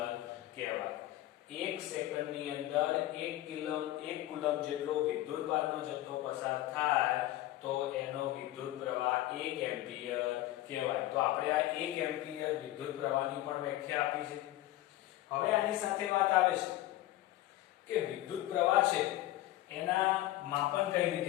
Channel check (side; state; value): right; quieter; 15.4 dB